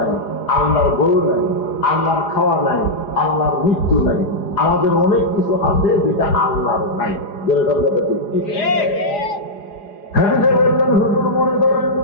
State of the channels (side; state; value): right; late; 4.9 ms